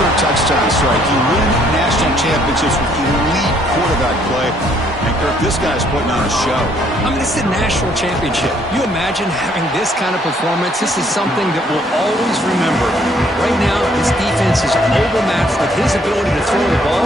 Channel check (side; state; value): both; normal; correlation 0.65